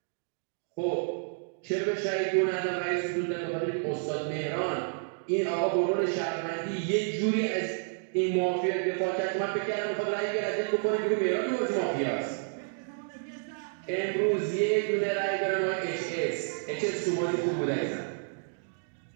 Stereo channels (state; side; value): silent; left; digital silence